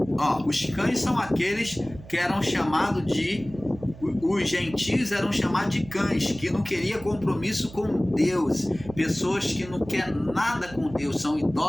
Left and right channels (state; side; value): noise; right; hum, 17 dB below the sound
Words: Os cães são aqueles que eram chamados os gentios eram chamados de cães, que não queriam compromisso com Deus, pessoas que não querem nada com Deus, são